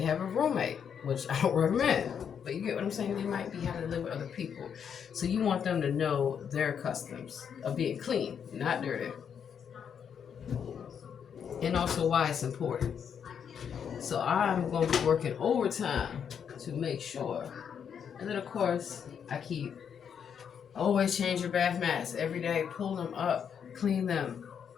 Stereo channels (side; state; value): right; quieter; 7.7 dB